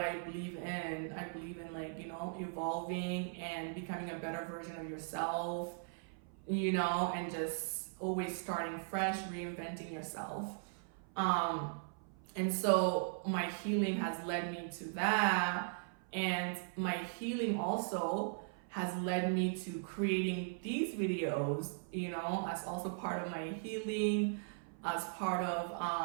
I believe in. I believe in, like, you know, evolving and becoming a better version of yourself, you know, and just always starting fresh, reinventing yourself. And so my healing has led me to that. And my healing also has led me to creating these videos, you know, as also part of my healing, as part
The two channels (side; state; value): left; silent; 52 dB below the other